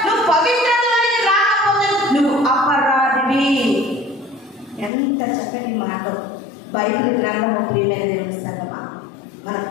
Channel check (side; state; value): right; drops out; at 4.9 s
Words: నువ్వు పవిత్రతలోనికి రాకపోతే నువ్వు అపరాధివి. ఎంత చక్కటి మాట. బైబిల్ గ్రంథము ప్రియమైన దేవుని సంగమా, మన